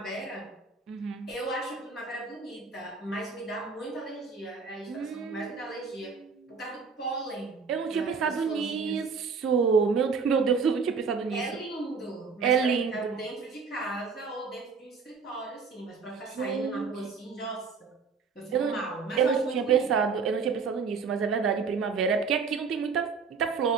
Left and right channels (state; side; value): quieter; left; 5.2 dB